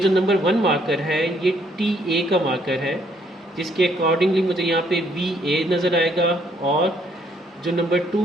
नंबर 1 मार्कर है ये TA का मार्कर है, जिसके अकॉर्डिंगली मुझे यहाँ पे VA नज़र आएगा, और जो नंबर 2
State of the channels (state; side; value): normal; both; correlation 0.68